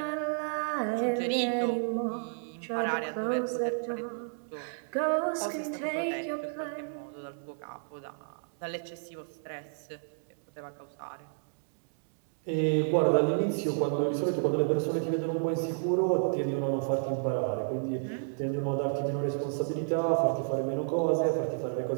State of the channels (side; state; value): left; silent; digital silence